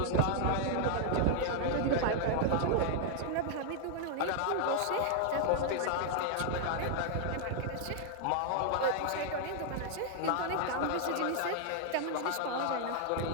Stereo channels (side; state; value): both; different; correlation 0.00